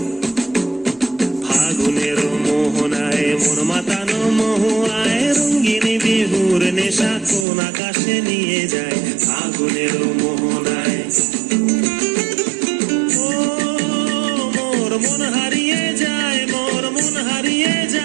ফাগুনের মোহনায় মন মাতানো মহুয়ায়, রঙ্গিনী বিহুর নেশা কোন আকাশে নিয়ে যায়। ফাগুনের মোহনায় মন হারিয়ে যায়, মোর মন হারিয়ে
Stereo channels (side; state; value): left; drops out; at 7.5 s